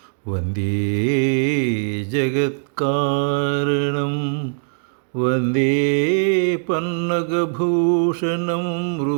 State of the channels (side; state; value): left; silent; digital silence